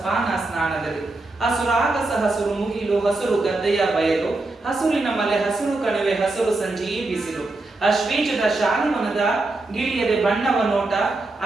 ಸ್ನಾನದಲ್ಲಿ ಹಸುರಾಗಸ ಹಸುರು ಮುಗಿಲು ಹಸುರು ಗದ್ದೆಯ ಬಯಲು ಹಸುರಿನ ಮಲೆ ಹಸುರು ಕಣಿವೆ ಹಸುರು ಸಂಜಿ ಬಿಸಿಲು ಅಶ್ವೀಜದ ಶಾಲಿಮನದ ಗಿಳಿಯದೆ ಬಣ್ಣವ ನೋಟ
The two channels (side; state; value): left; quieter; 3.1 dB